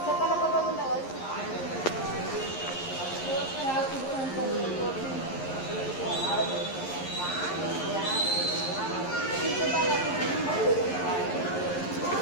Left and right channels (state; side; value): late; right; 11 ms